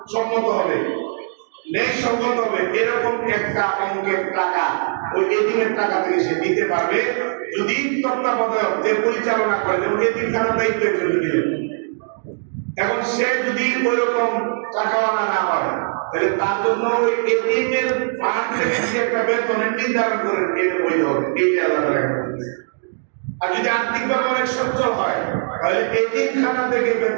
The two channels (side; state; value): left; silent; digital silence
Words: সম্মত হবে, ন্যায় সঙ্গত হবে এরকম একটা অঙ্কের টাকা ওই এতিমের টাকা থেকে সে নিতে পারবে যদি তত্ত্বাবধায়ক যে পরিচালনা করে, যেমন এতিমখানার দায়িত্ব একজন দিলেন। এখন সে যদি ওইরকম টাকাওয়ালা না হয় তাহলে তার জন্য ওই এতিমের ফান্ড থেকে যে একটা বেতনের নির্ধারণ করে এটা বৈধ হবে, এইটা আলাদা রাখা। আর যদি আর্থিকভাবে অনেক সচ্ছল হয় তাহলে এতিমখানা থেকে